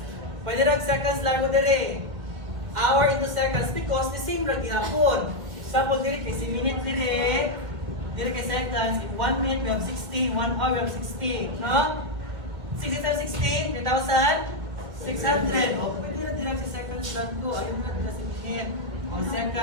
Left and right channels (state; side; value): late; left; 2.1 ms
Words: pwede na seconds lang mo dire. Hour into seconds because the same lang gihapon. Example dire kay minute dire kay seconds. In 1 minute we have 60, 1 hour we have 60. No? 60 times 60, 3,600. O pwede na dire sa seconds lang ko. Ayun na dire sa minute. O